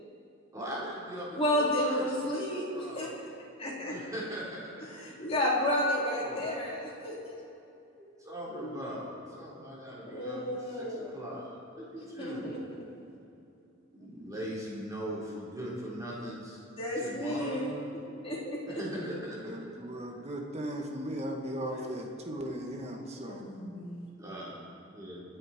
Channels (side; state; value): both; normal; correlation 0.15